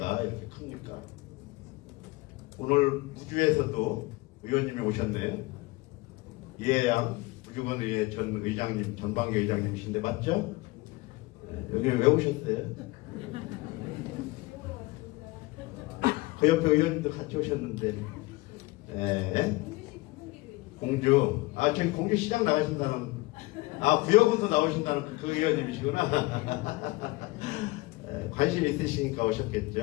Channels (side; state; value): right; quieter; 22.1 dB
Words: 이렇게 큽니까? 오늘 우주에서도 의원님이 오셨네요. 이해양 우주건의회 전 의장님, 전방위 의장님이신데 맞죠? 네, 여기 왜 오셨어요? 그 옆에 의원님도 같이 오셨는데 네. 공주 저기 공주시장 나가신다는 구역에서 나오신다는 그 의원님이시구나. 관심 있으시니까